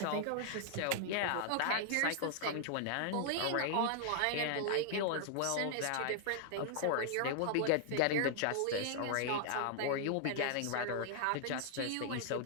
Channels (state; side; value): different; both; correlation 0.00